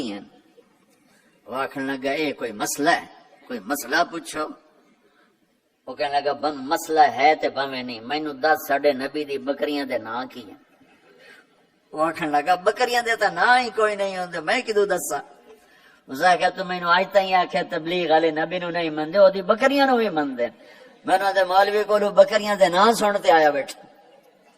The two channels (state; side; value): identical; both; correlation 1.00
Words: ہیں؟ وہ آخر لگا اے کوئی مسئلہ ہے، کوئی مسئلہ پوچھو۔ وہ کہنے لگا بند مسئلہ ہے تے بھویں نہیں، مینوں دس ساڈے نبی دی بکریاں دے نام کی ہیں؟ وہ آخر لگا بکریاں دے تا نام ہی کوئی نہیں ہوندے، میں کدوں دسا؟ اس نے کہا تو مینوں اج تائیں آکھیا تبلیغ والے نبی نو نہیں مندے، اودی بکریاں نو بھی مندے۔ میں نے مولوی کولو بکریاں دے نام سن تے آیا بیٹھا۔